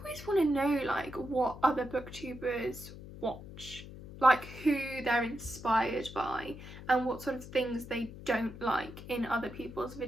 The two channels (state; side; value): noise; left; hum, 14 dB below the sound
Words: want to know like what other booktubers watch, like who they're inspired by and what sort of things they don't like in other people's